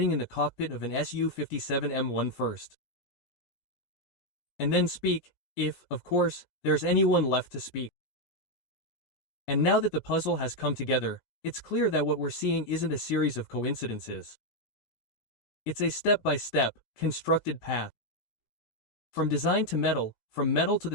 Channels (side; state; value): right; late; 17 ms